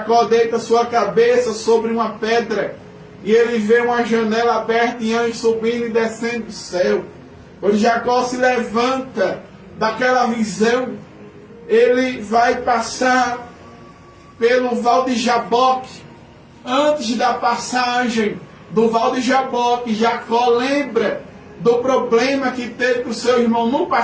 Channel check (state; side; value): identical; both; correlation 1.00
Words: deita sua cabeça sobre uma pedra, e ele vê uma janela aberta e anjos subindo e descendo do céu. Quando Jacó se levanta daquela visão, ele vai passar pelo Val de Jaboque. Antes da passagem do Val de Jaboque, Jacó lembra do problema que teve com o seu irmão no